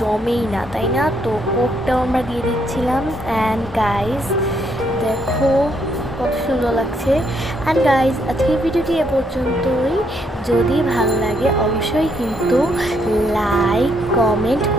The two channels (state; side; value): normal; both; correlation 0.73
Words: না, তাই না? তো কোকটাও আমরা দিয়ে দিচ্ছিলাম। অ্যান্ড গাইস দেখো কত সুন্দর লাগছে। অ্যান্ড গাইজ, আজকের ভিডিওটি এ পর্যন্তই। যদি ভালো লাগে অবশ্যই কিন্তু লাইক কমেন্ট